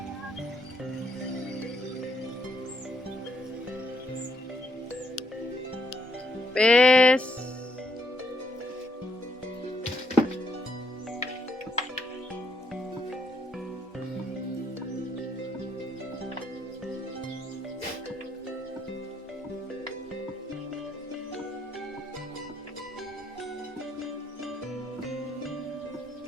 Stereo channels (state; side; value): normal; both; correlation 0.74